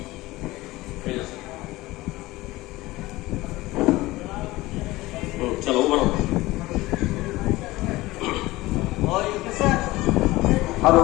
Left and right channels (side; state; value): right; quieter; 19.1 dB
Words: चला उभं राहा. हॅलो